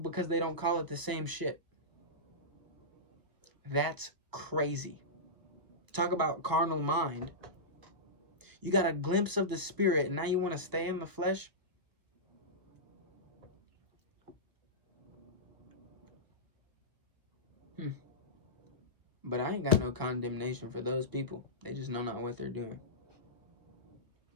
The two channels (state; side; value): late; left; 1.0 ms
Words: they don't call it the same shit. That's crazy. Talk about carnal mind. You got a glimpse of the spirit and now you want to stay in the flesh? But I ain't got no condemnation for those people. They just know not what they're doing.